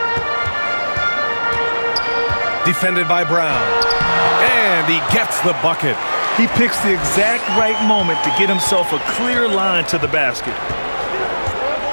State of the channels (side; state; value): both; inverted; correlation -1.00